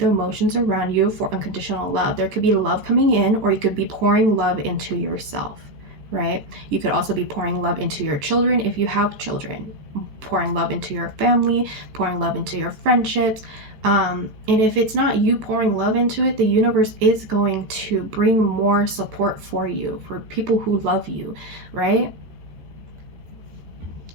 emotions around you for unconditional love. There could be love coming in, or you could be pouring love into yourself, right? You could also be pouring love into your children if you have children, pouring love into your family, pouring love into your friendships. And if it's not you pouring love into it, the universe is going to bring more support for you, for people who love you, right?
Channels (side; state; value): left; late; 13 ms